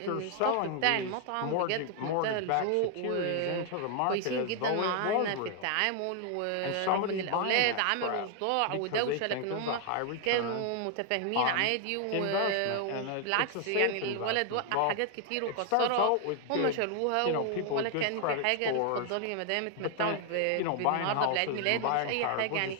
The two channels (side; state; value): both; different; correlation 0.00